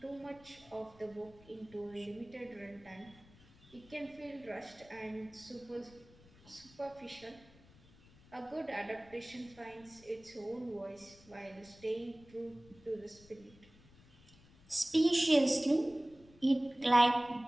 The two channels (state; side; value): noise; left; rumble, 25 dB below the sound